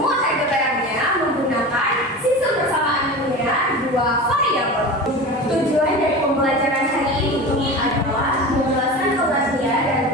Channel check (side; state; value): both; normal; correlation 0.31